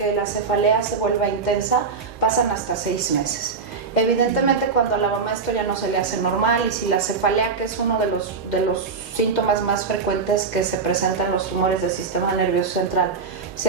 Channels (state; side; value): quieter; left; 4.9 dB